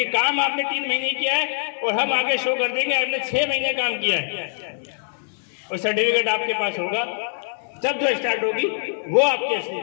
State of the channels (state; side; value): silent; right; digital silence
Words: काम आपने 3 महीने किया है और हम आगे शो कर देंगे आपने 6 महीने काम किया है, और सर्टिफिकेट आपके पास होगा। जब जो स्टार्ट होगी वो आपकी असली